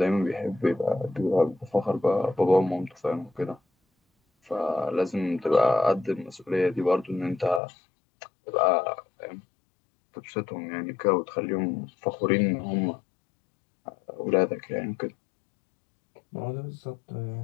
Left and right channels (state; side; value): drops out; right; at 7.6 s